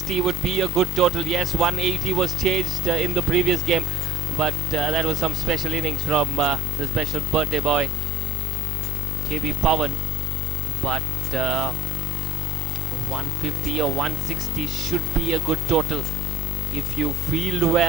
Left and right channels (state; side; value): normal; both; correlation 0.42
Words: would be a good total. Yes, 180 was chased in the previous game, but that was some special innings from the special birthday boy KB Pawan. But 150 or 160 should be a good total. If you field